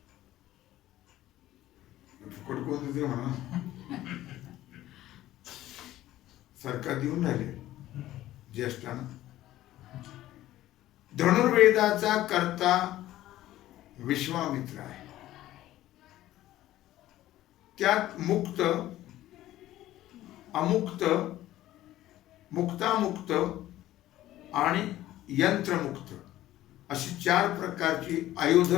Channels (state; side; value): quieter; right; 14.6 dB